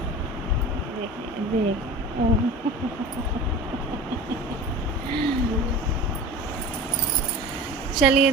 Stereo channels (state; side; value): normal; both; correlation 0.35